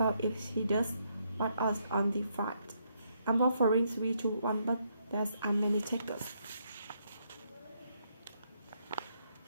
if he does? What odds on the fight? I'm offering 3-1, but there's many takers.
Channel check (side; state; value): both; inverted; correlation -0.75